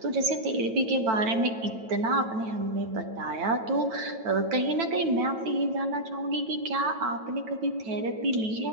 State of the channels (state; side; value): late; left; 9.1 ms